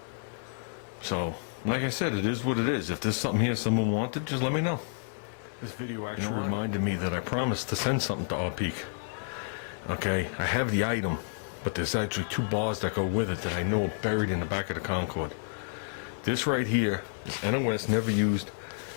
So, like I said, it is what it is. If there's something here someone wanted, just let me know. This video actually reminded me that I promised to send something to our Peak. Okay, I have the item, but there's actually 2 bars that go with it that I know are buried in the back of the Concorde. This right here is NOS, never used.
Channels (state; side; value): silent; right; 58 dB below the other